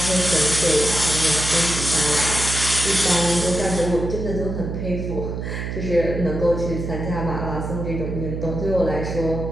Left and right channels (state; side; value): noise; right; hum, 5 dB below the sound